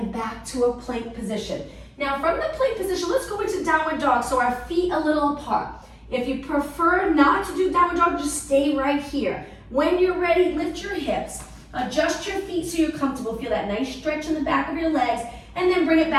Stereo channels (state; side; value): identical; both; correlation 1.00